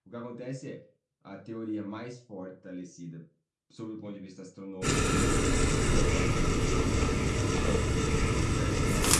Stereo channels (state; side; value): identical; both; correlation 1.00